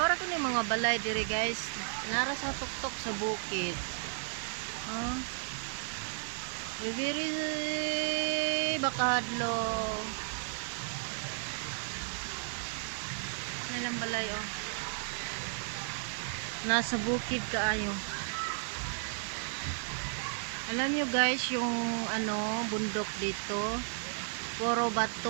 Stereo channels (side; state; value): left; silent; digital silence